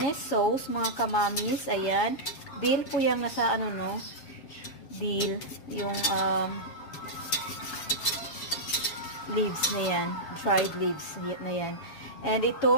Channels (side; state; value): right; late; 7.2 ms